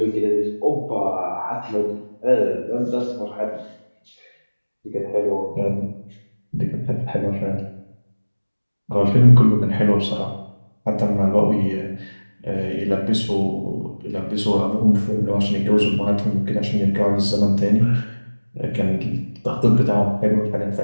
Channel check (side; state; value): both; inverted; correlation -1.00